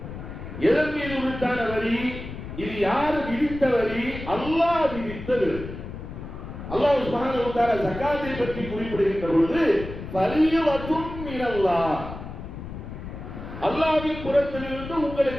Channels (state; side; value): noise; left; rumble, 10 dB below the sound